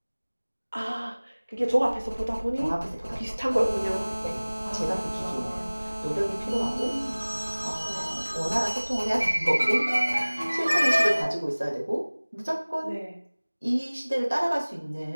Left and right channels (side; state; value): both; inverted; correlation -1.00